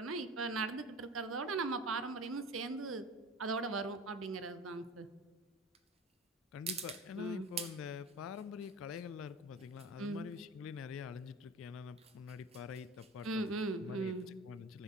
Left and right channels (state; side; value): normal; both; correlation 0.36